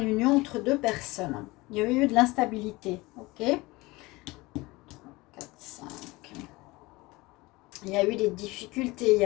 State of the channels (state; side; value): quieter; right; 21.8 dB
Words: une union entre deux personnes. Il y a eu de l'instabilité, ok? 4, 5. Il y a eu des difficultés, il y